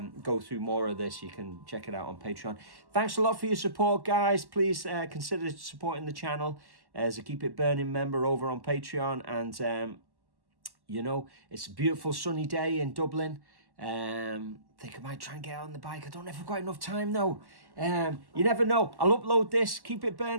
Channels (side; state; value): left; late; 1.1 ms